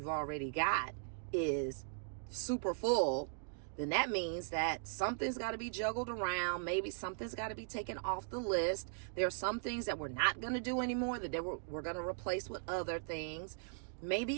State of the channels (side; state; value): left; silent; digital silence